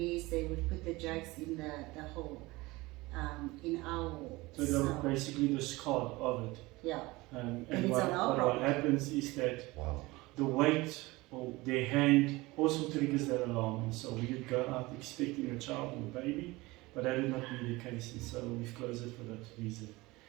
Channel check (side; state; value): left; quieter; 21.4 dB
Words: they would put the drugs in the hole. In our wall. So they're basically the scar of it. Yeah. And what happens is that the weight or their hand also triggers that alarm. And so we would go out expecting a child or a baby, but that would not be the case. And so we've closed it for that reason.